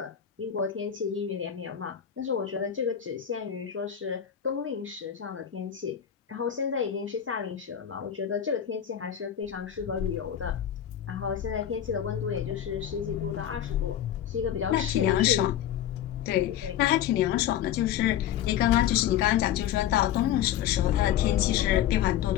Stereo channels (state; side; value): quieter; right; 10.3 dB